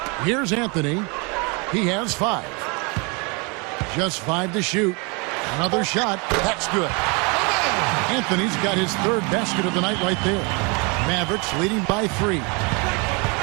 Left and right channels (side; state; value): left; quieter; 31.0 dB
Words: Here's Anthony. He has 5. Just 5 to shoot. Another shot. That's good. Anthony's got his 3rd basket of the night right there. Mavericks leading by 3.